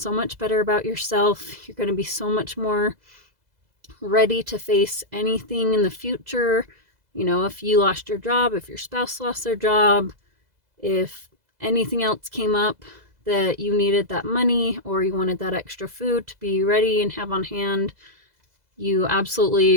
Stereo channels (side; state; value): left; late; 2.0 ms